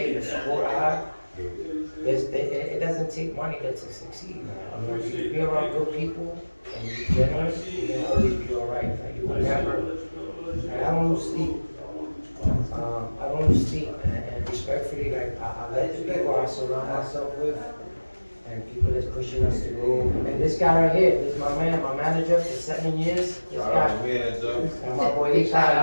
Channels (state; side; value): inverted; both; correlation -1.00